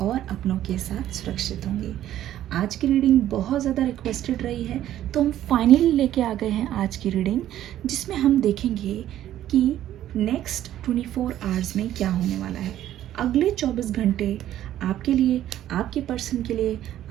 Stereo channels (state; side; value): quieter; left; 12.3 dB